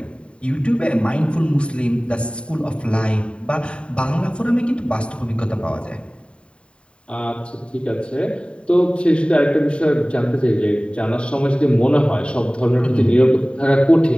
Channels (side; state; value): right; late; 0.057 ms